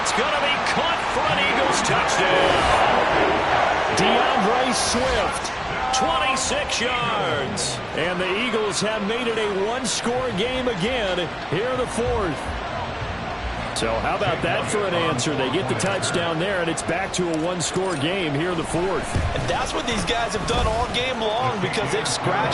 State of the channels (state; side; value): identical; both; correlation 1.00